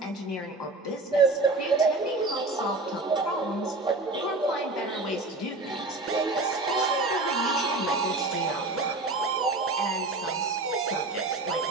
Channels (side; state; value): left; quieter; 3.2 dB